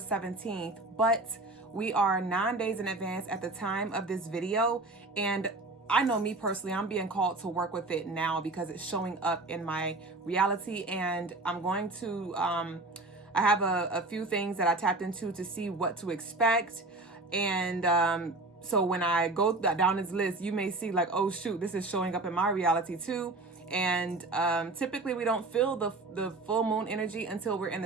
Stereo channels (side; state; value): left; quieter; 3.1 dB